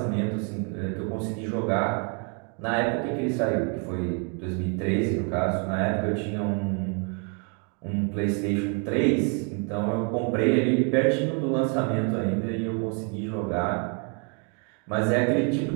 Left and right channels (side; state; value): left; quieter; 37.7 dB